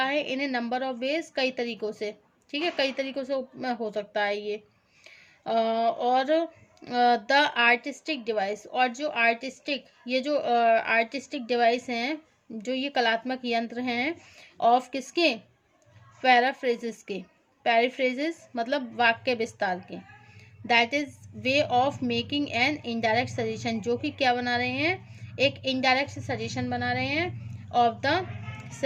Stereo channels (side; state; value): both; identical; correlation 1.00